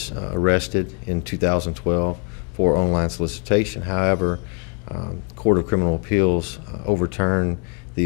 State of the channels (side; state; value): right; quieter; 36.7 dB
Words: arrested in 2012 for online solicitation. However, Court of Criminal Appeals overturned